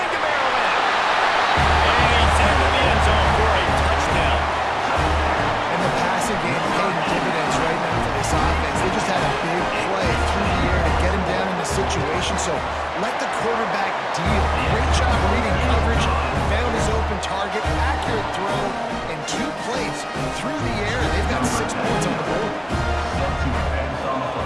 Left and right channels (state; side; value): identical; both; correlation 1.00